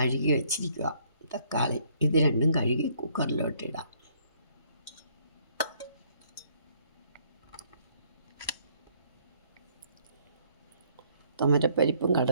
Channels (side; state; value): both; inverted; correlation -0.65